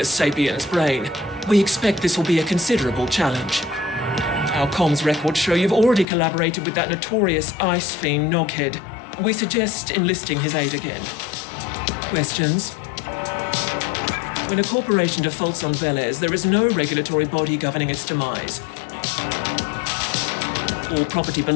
sapiens brain. We expect this will be a considerable challenge. Our comms records show you've already collaborated with that notorious ice fiend Noghead. We suggest enlisting his aid again. Questions? When a corporation defaults on Velez, there is no regulatory body governing its demise. All property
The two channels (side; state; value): right; drops out; at 6.1 s